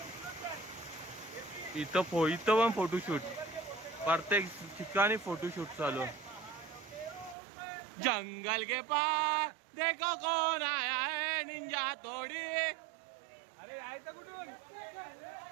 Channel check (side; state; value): left; drops out; at 7.4 s